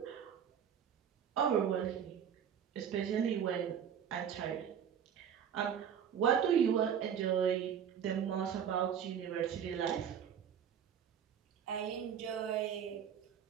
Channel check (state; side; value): quieter; left; 8.4 dB